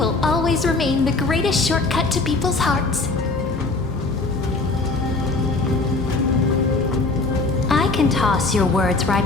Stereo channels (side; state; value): right; quieter; 3.5 dB